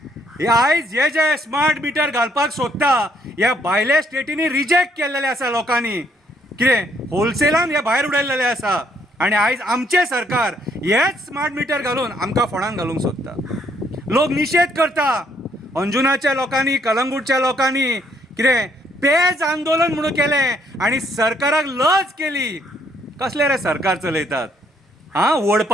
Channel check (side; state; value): both; normal; correlation 0.69